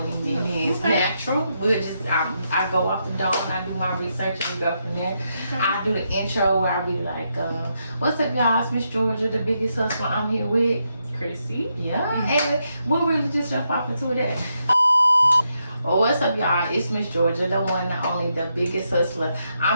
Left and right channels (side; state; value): both; inverted; correlation -0.82